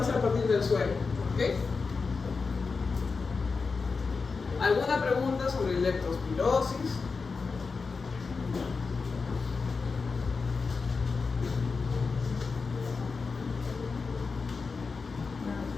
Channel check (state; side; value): quieter; right; 4.6 dB